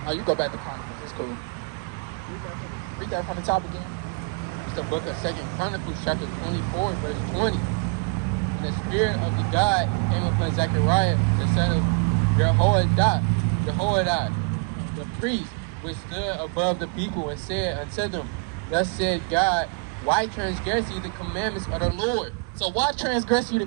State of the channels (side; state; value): left; quieter; 33.1 dB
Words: Oh, you go back to Chronicles. It's cool. Read that from the top again. It's the book of 2 Chronicles, chapter 24, verse 20. And the Spirit of the God came upon Zechariah, the son of Jehoiada, the priest, which stood above the people, and said unto them, Thus said God, why transgress ye the commandments of the Lord? So why transgress you the